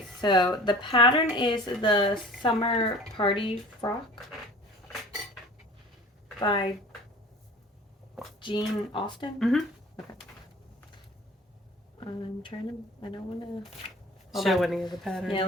so the pattern is the Summer Party Frock. by Jean Austen. Mm-hmm. Okay. I'm trying to. I don't want to show any of the pattern. Yeah,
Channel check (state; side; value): normal; both; correlation 0.44